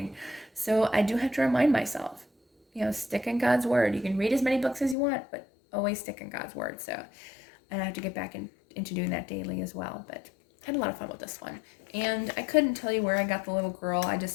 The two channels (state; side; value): drops out; right; at 5.0 s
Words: So I do have to remind myself, you know, stick in God's Word. You can read as many books as you want, but always stick in God's Word. So I have to get back into doing that daily as well. But I had a lot of fun with this one. And I couldn't tell you where I got the little girl. I